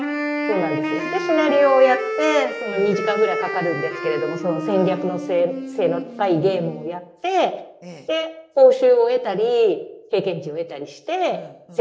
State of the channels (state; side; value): identical; both; correlation 1.00